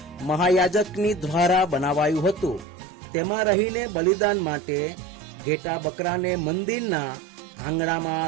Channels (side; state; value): left; drops out; at 2.7 s